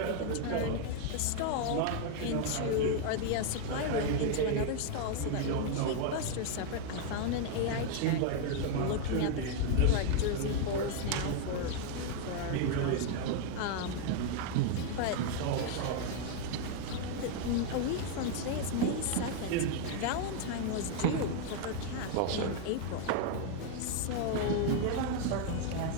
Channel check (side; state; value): both; different; correlation 0.00